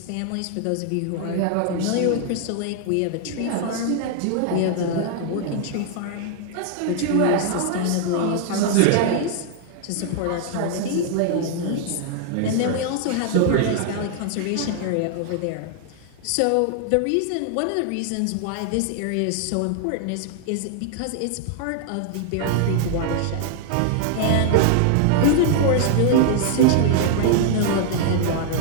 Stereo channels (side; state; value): both; different; correlation 0.00